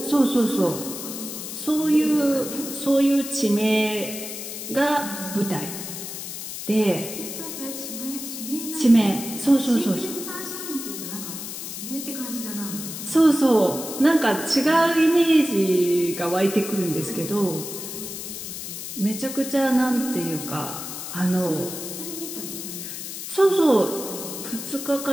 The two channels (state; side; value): noise; left; hiss, 8 dB below the sound